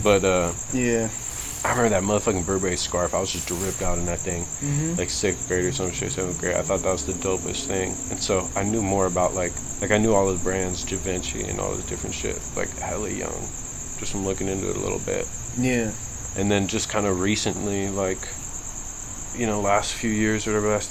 But yeah. I remember that motherfucking Burberry scarf. I was just dripped out in that thing, like 6th grade or some shit, 7th grade. I thought that was the dopest thing. And so I knew more about like I knew all the brands, Givenchy and all this different shit, like hella young. Just from looking into it a little bit. Yeah. And then just kind of recently, like, you know, last few years, or whatever, last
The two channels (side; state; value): both; identical; correlation 1.00